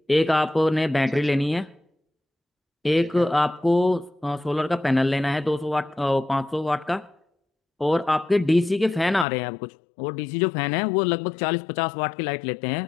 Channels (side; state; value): right; drops out; at 9.2 s